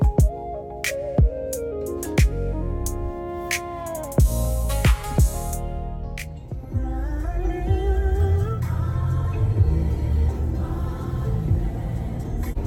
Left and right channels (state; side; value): identical; both; correlation 1.00